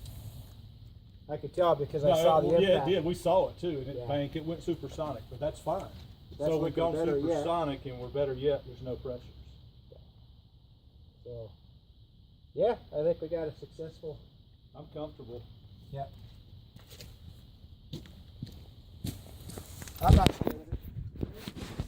I could tell because I saw the impact. Yeah, it did. We saw it too, and it Yeah. banked. It went supersonic, but that's fine. That's So we've gone looking better yet. supersonic, and we're better yet. There's no pressures. So, yeah, I think we got a successful. I'm comfortable. Yeah. I'm not scared of it.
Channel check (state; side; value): identical; both; correlation 1.00